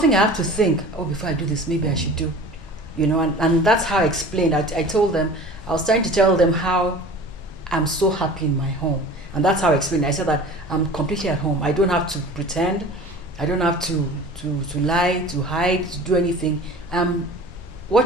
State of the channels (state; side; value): normal; both; correlation 0.41